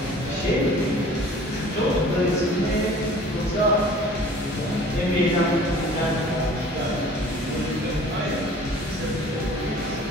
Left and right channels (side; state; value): both; normal; correlation 0.48